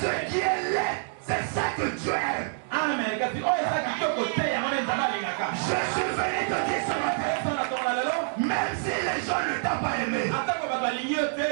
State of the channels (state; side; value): silent; left; digital silence